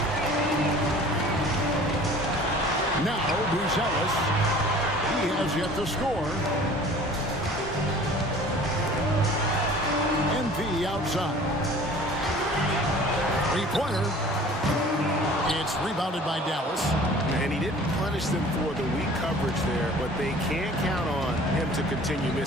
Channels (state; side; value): normal; both; correlation 0.47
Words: Now Buzelis. He has yet to score. MP outside. 3-pointer. It's rebounded by Dallas. And he didn't punish them for the weak coverage there, but they can't count on him to continue